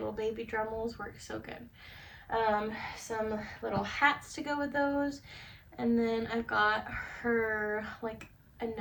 baby Dremels work so good. Some little hats to go with those. And then I've got her like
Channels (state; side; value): identical; both; correlation 1.00